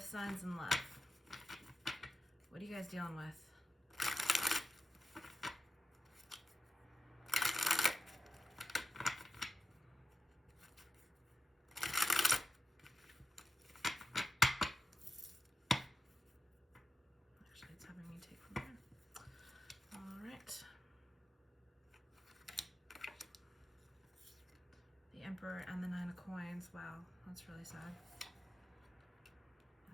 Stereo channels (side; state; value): both; normal; correlation 0.91